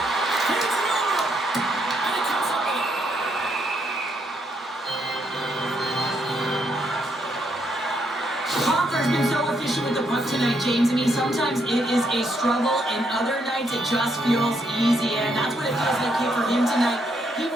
Here's the over. And he comes up with it. Hoffer's been so efficient with the puck tonight, James. I mean, sometimes it is a struggle, and other nights it just feels easy, and that's what it feels like here for him tonight. He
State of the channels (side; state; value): both; normal; correlation 0.75